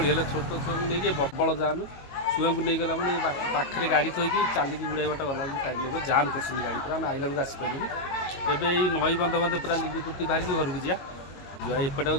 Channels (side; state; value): right; late; 22 ms